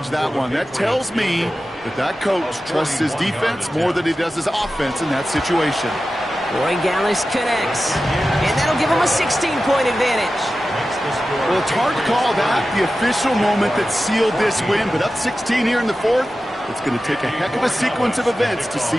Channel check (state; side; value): normal; both; correlation 0.94